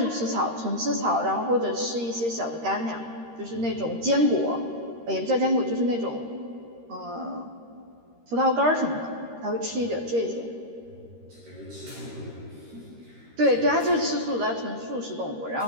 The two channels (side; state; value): left; late; 13 ms